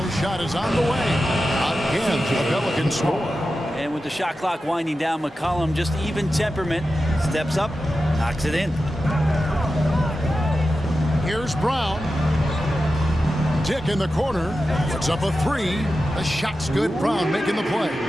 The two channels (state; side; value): normal; both; correlation 0.92